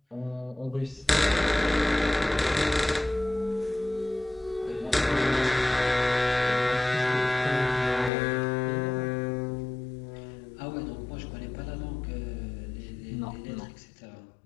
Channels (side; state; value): right; drops out; at 8.1 s